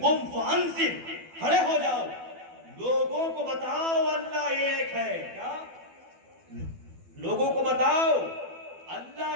قم فانذر, کھڑے ہو جاؤ لوگوں کو بتاؤ اللہ ایک ہے. کیا لوگوں کو بتاؤ اللہ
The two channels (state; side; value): late; left; 12 ms